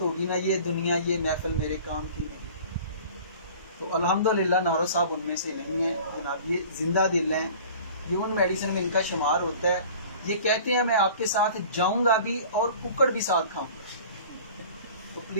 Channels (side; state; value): both; inverted; correlation -0.44